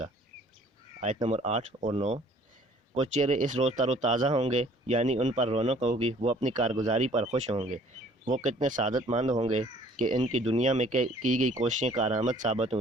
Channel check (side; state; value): both; normal; correlation 0.55